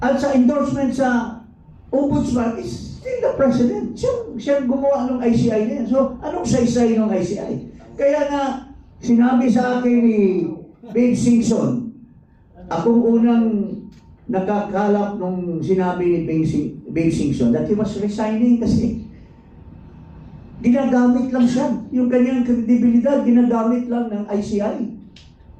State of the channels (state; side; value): identical; both; correlation 1.00